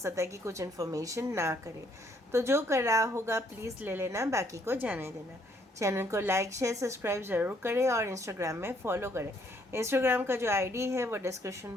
है कि कुछ इन्फॉर्मेशन ना करे. तो जो कर रहा होगा प्लीज़ ले लेना, बाकी को जाने देना. चैनल को लाइक शेयर सब्सक्राइब ज़रूर करें और इंस्टाग्राम में फॉलो करें. इंस्टाग्राम का जो आईडी है वो डिस्क्रिप्शन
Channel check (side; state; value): both; normal; correlation 0.67